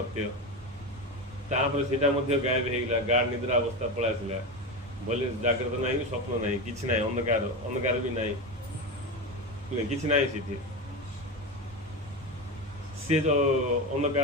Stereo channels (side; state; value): both; normal; correlation 0.19